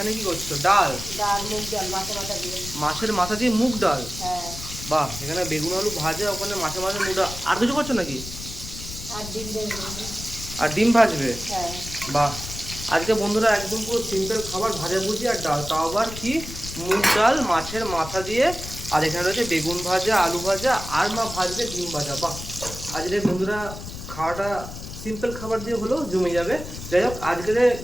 কি করছো? ডাল। ডাল, মুগ ডাল, মাথা মাথা দিয়ে। মাছের মাথা দিয়ে মুগ ডাল। হ্যাঁ। বাহ, এখানে বেগুন আলু ভাজা, ওখানে মাছের মাথা মুগ ডাল। আর কিছু করছো নাকি? আর ডিম দেবো। আর ডিম ভাজবে? হ্যাঁ। বাহ, আজকে বন্ধুরা একদম পুরো সিম্পল খাবার, ভাজা ভুজি আর ডাল, তাও আবার কি মুগ ডাল মাছের মাথা দিয়ে। আর এখানে রয়েছে বেগুন ভাজা, আলু ভাজা, আর মা ভাজবে ডিম ভাজা। বাহ, আজকে বন্ধুরা খাওয়াটা সিম্পল খাবার দিয়ে হলেও জমে যাবে। যাই হোক, আজকে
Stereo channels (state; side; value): noise; left; rumble, 10 dB below the sound